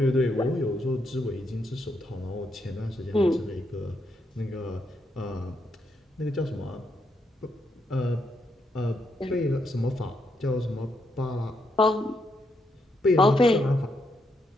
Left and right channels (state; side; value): normal; both; correlation 0.79